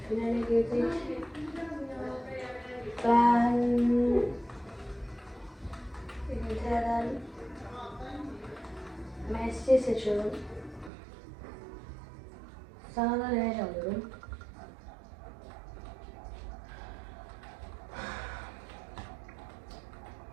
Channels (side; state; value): left; drops out; at 10.9 s